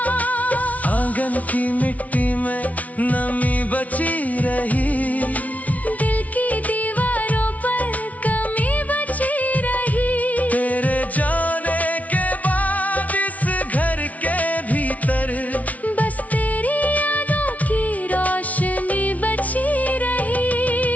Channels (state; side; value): late; right; 0.070 ms